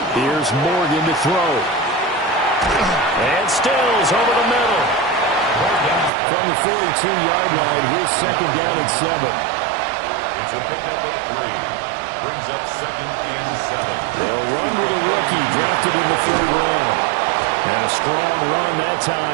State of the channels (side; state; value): left; drops out; at 6.1 s